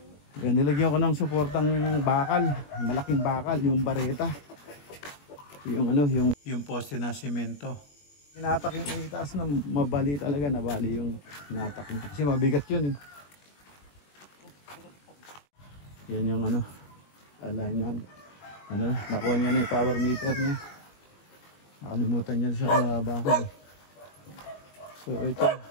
Yan, nilagyan ko ng suportang bakal, malaking bakal, yung bareta, yung ano, yung poste na semento. Inatak yung itaas na mabali talaga, nabali yung inatak niya kasi mabigat yun eh. Yan yung ano, alignment. Ano, nakuha niya na yung power meter niya. Nakalimutan niya sa bakal. So ito,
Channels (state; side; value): late; right; 21 ms